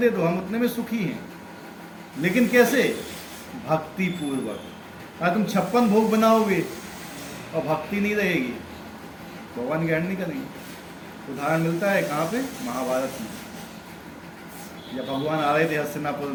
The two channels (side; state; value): both; identical; correlation 1.00